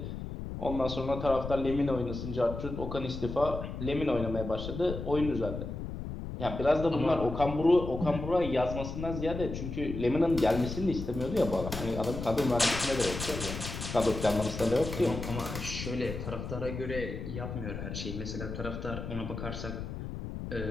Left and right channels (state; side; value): noise; left; rumble, 7 dB below the sound